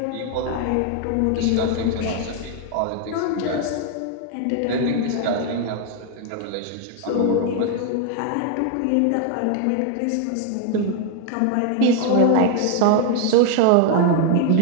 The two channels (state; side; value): different; both; correlation 0.00